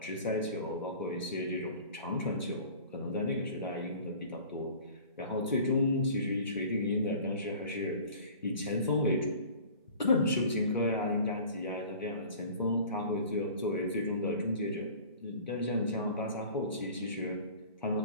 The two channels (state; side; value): inverted; both; correlation -0.44